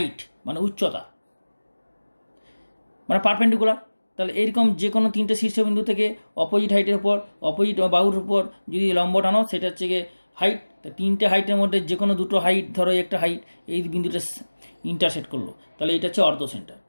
মানে উচ্চতা, মানে পারপেন্ডিকুলার। তাহলে এইরকম যে কোনো তিনটে শীর্ষবিন্দু থেকে অপোজিট হাইটের উপর, অপোজিট বাহুর উপর যদি লম্ব টানো, সেটা হচ্ছে গিয়ে হাইট। তো তিনটে হাইটের মধ্যে যে কোনো দুটো হাইট, ধরো একটা হাইট এই বিন্দুটা ইন্টারসেক্ট করলো, তাহলে এটা হচ্ছে অর্ধ সেন্টার,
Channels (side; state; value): both; inverted; correlation -1.00